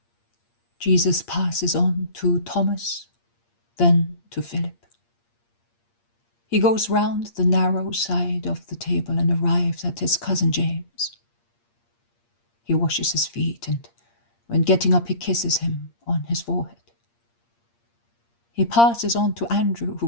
Jesus passes on to Thomas, then to Philip. He goes round the narrow side of the table and arrives at his cousin James. He washes his feet, and when getting up he kisses him on his forehead. He passes on to Andrew,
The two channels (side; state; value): right; late; 8.6 ms